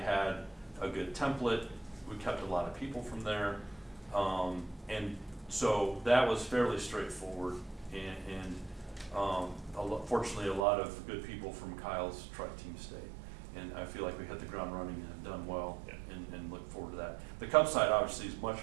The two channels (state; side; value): drops out; left; at 10.6 s